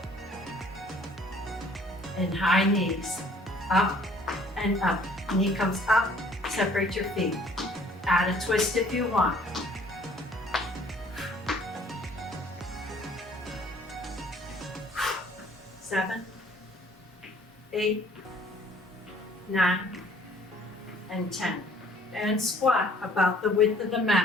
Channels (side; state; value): both; normal; correlation 0.57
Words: And high knees, up and up. Knee comes up, separate your feet. Add a twist if you want. Seven, 8, 9, and 10. And squat about the width of the